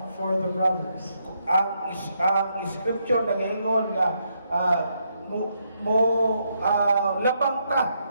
for the brothers. Ang scripture nagaingon nga labang ta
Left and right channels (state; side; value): inverted; both; correlation -0.78